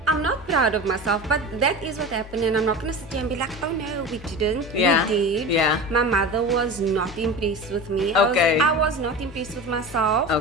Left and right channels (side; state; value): both; normal; correlation 0.31